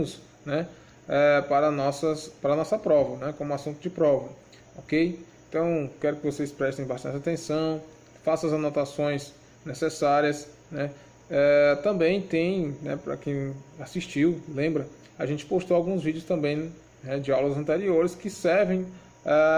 né, para a nossa prova, né, como assunto de prova, ok? Então quero que vocês prestem bastante atenção, façam as anotações necessárias, né? Também tem, né, para quem assistiu, lembra, a gente postou alguns vídeos também, de aulas anteriores que servem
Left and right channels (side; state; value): both; identical; correlation 1.00